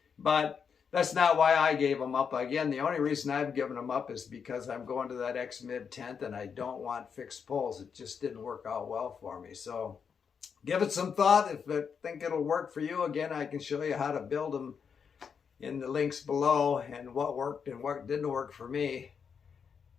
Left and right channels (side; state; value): right; quieter; 6.6 dB